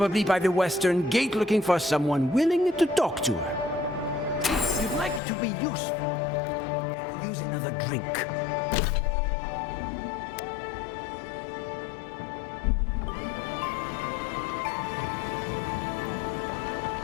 by the western gate looking for someone willing to talk to her. If you'd like to be useful, I could use another drink.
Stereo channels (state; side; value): drops out; right; at 5.2 s